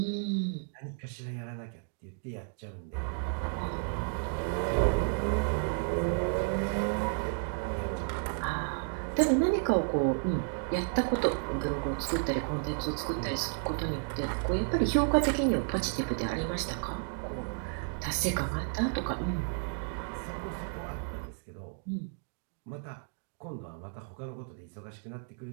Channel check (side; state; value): left; silent; 56 dB below the other